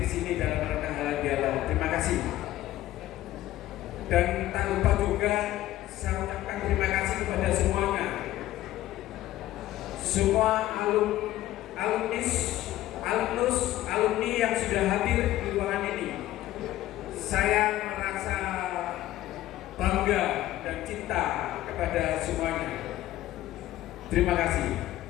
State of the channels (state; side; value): quieter; right; 14.8 dB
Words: sini dalam rangka halal bihalal. Terima kasih. Dan tak lupa juga saya ucapkan terima kasih kepada semuanya, semua alumni yang sudah hadir di ruangan ini. Saya merasa bangga dan cinta kepada semuanya. Terima kasih.